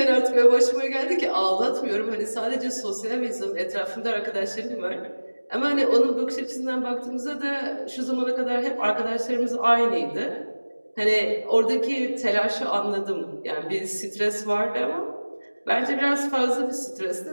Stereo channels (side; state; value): both; inverted; correlation -1.00